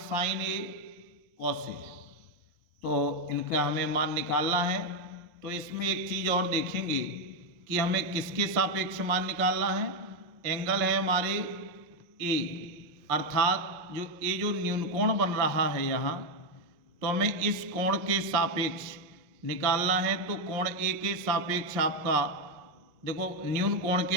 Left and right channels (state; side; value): late; left; 5.6 ms